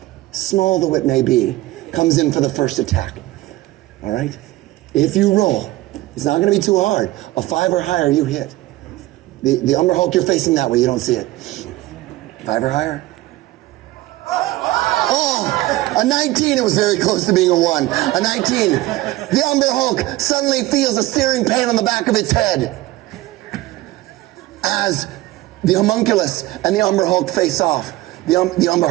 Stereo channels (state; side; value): quieter; left; 17.7 dB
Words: small though it may be, comes in for the first attack. All right? If you roll, it's not going to be too hard. A 5 or higher, you hit. The Umber Hulk, you're facing that way. You don't see it. 5 or higher. Oh, a 19. It was very close to being a 1. A 19. The Umber Hulk suddenly feels a searing pain on the back of its head as the homunculus and the Umber Hulk face off. The Umber